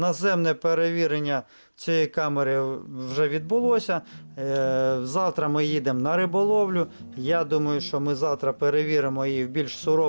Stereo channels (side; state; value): both; inverted; correlation -1.00